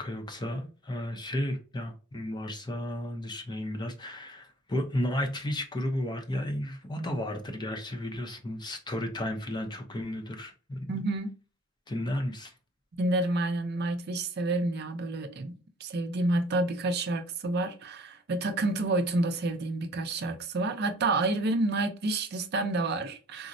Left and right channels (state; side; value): normal; both; correlation 0.56